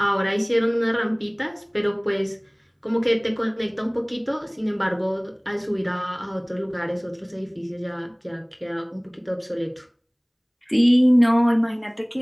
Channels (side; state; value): both; identical; correlation 1.00